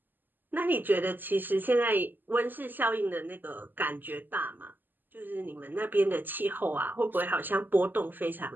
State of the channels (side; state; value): left; late; 0.089 ms